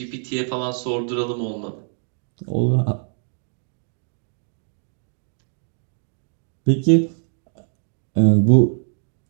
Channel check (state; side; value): silent; left; 60 dB below the other